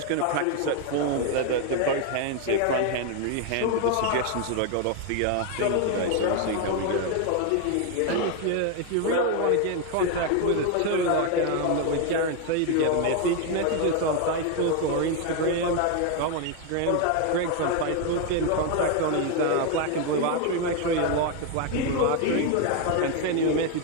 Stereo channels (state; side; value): different; both; correlation 0.01